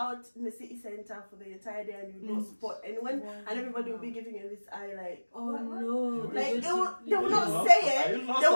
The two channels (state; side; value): inverted; both; correlation -1.00